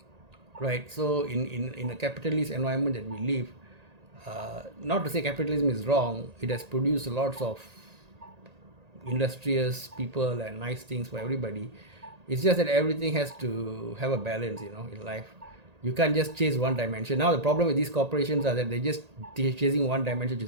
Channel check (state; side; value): late; left; 1.8 ms